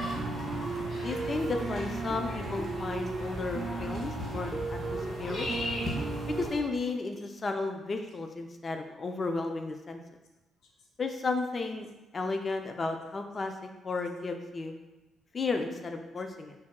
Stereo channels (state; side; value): normal; both; correlation 0.81